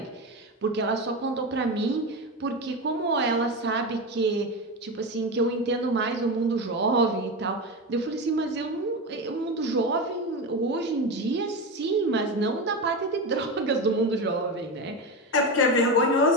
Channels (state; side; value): normal; both; correlation 0.19